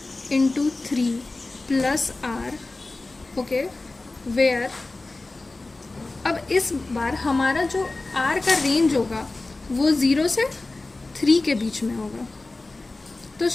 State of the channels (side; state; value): right; quieter; 3.2 dB